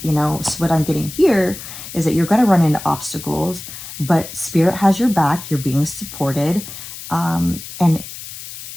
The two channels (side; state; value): left; noise; hiss, 12 dB below the sound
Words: you know, so what I'm getting here is that you're going to run into obstacles, but Spirit has your back. You're being supported. And